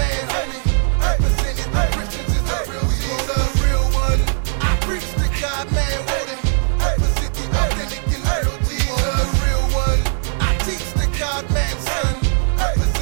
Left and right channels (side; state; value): left; silent; 65 dB below the other